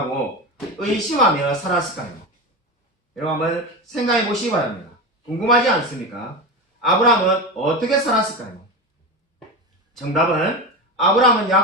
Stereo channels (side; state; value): both; normal; correlation 0.21